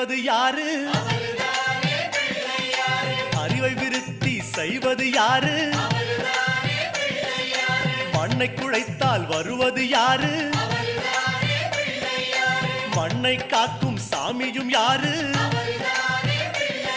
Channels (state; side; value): identical; both; correlation 1.00